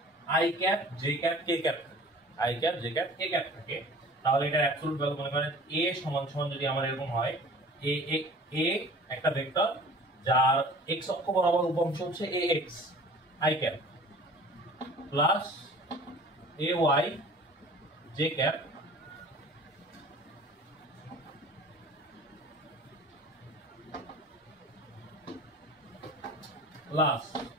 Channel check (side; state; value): both; normal; correlation 0.45